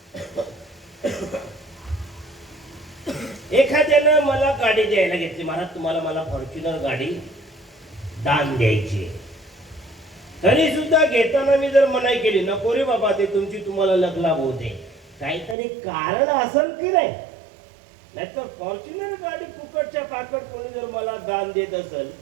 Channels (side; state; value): left; drops out; at 15.6 s